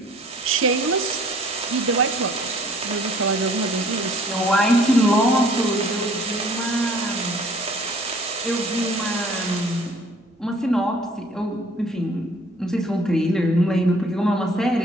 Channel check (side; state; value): both; normal; correlation 0.55